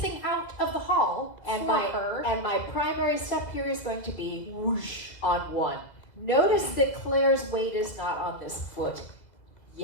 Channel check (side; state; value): right; late; 2.2 ms